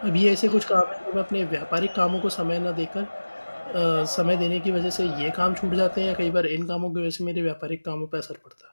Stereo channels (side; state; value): both; inverted; correlation -1.00